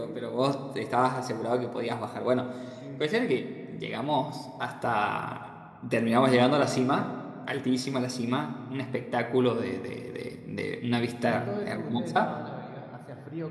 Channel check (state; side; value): identical; both; correlation 1.00